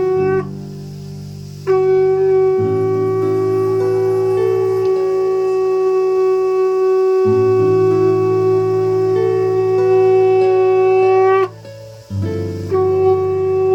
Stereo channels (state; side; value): identical; both; correlation 1.00